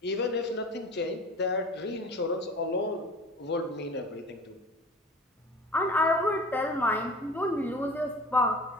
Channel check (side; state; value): both; normal; correlation 0.40